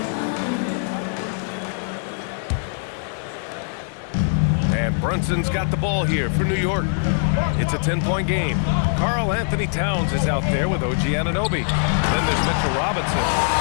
And Brunson's got the ball here for New York. It's a 10-point game. Karl Anthony Towns is out there with OG Anunoby. Then there's Mitchell Robinson.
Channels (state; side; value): silent; right; 60 dB below the other